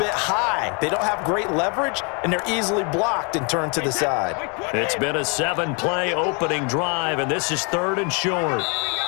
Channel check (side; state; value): right; quieter; 34.7 dB